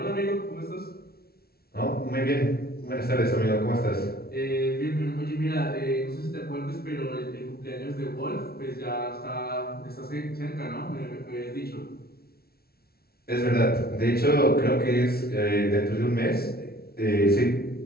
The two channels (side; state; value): right; late; 0.45 ms